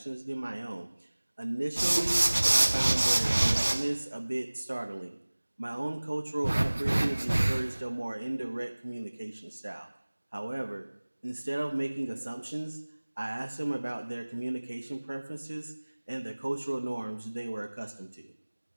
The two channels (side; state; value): both; inverted; correlation -1.00